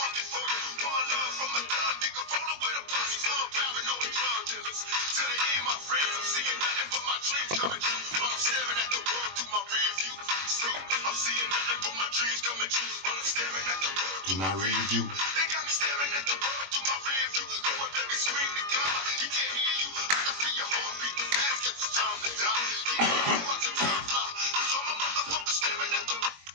it for you. One love from a thug nigga, rolling with a posse full of paranoid drug dealers. To the end, my friends, I'm seeing nothing but my dreams coming true. While I'm staring at the world through my rear view. See, I'm seeing nothing but my dreams coming true. While I'm staring at the world through my rear view. They got me staring at the world through my rear view. Go up there and scream to God, he can't hear you. I can feel your heart beating fast, cause it's time to die. Watch the time fly. It's all my motherfuckers staring at the world.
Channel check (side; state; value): left; late; 21 ms